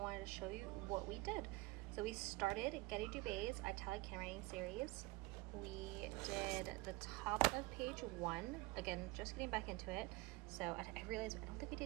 to show you what we did. So we started Getty Dubé's Italic Handwriting series. We did the top of page 1. Again, just getting back into it. So I realized I don't think we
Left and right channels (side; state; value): left; quieter; 22.1 dB